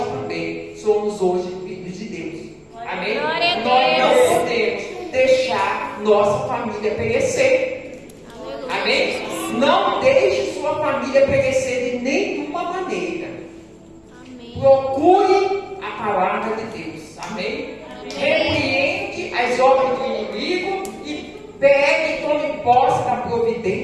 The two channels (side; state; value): both; identical; correlation 1.00